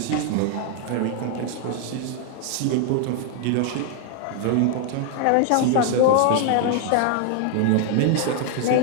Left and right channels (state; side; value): different; both; correlation 0.00